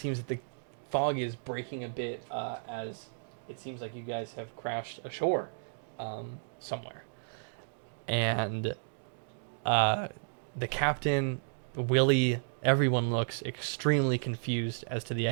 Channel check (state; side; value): silent; left; digital silence